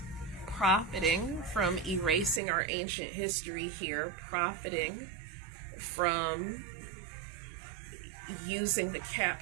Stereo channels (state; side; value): drops out; left; at 2.4 s